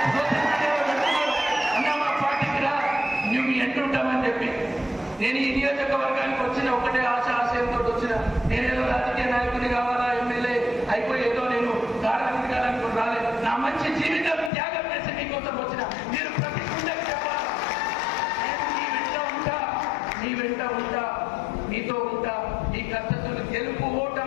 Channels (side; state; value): right; drops out; at 14.5 s